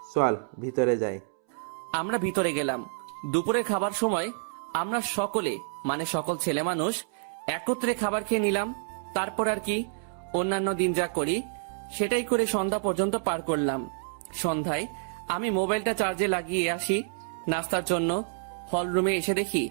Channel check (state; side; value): silent; left; 59 dB below the other